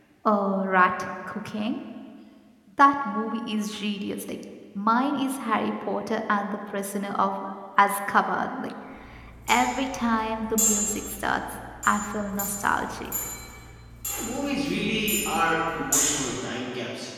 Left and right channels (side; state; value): both; identical; correlation 1.00